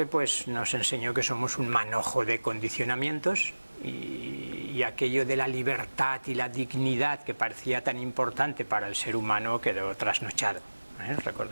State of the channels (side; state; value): both; inverted; correlation -1.00